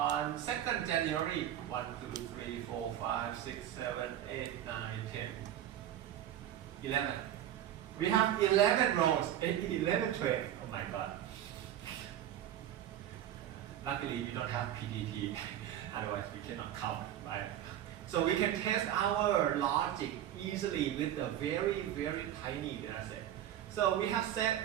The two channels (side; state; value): left; quieter; 11.4 dB